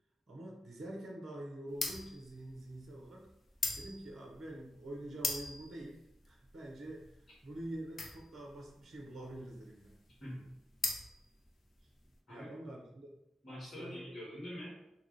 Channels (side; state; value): both; normal; correlation 0.84